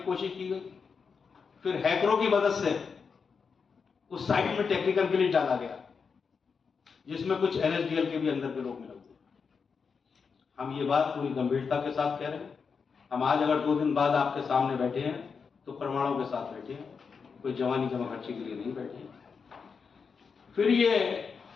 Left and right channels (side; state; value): right; quieter; 5.6 dB